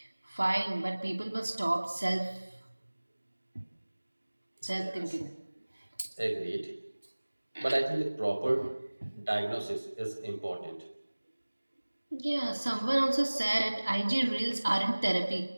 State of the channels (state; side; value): inverted; both; correlation -1.00